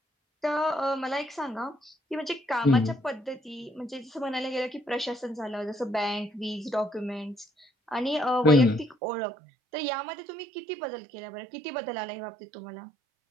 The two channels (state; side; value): drops out; left; at 9.0 s